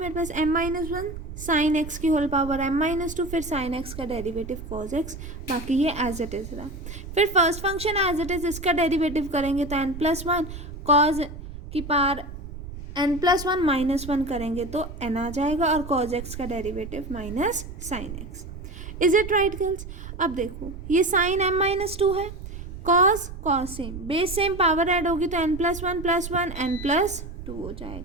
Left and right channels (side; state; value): right; noise; rumble, 11 dB below the sound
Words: पास m-1 साइन x की होल पावर m-2, फिर साइन x का डेरिवेटिव cos x, बाकी ये एज इट इज रहा। फिर first function as it is, इसका डेरिवेटिव करेंगे तो n प्लस 1 cos की पावर n प्लस 1 माइनस 1 करेंगे तो n आ जाएगा, और cos x का derivative minus sine x। Is it right girls? अब देखो ये साइन m-2 है, cos same, base same, power add होगी तो n plus 1 plus 1 n plus 2 हो